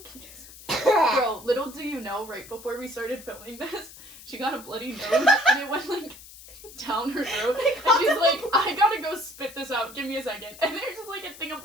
congested. Bro, little do you know, right before we started filming this, she got a bloody nose and it went like down her throat. And she's like, I gotta go spit this out, give me a second. And there's just like a thing of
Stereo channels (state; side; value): noise; left; hiss, 18 dB below the sound